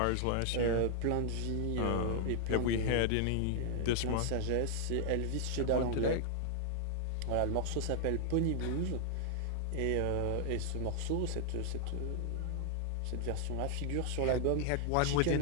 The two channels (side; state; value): both; different; correlation 0.00